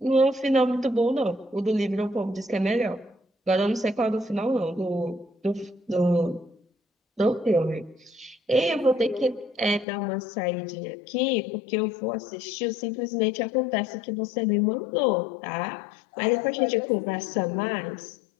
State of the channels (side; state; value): right; drops out; at 9.9 s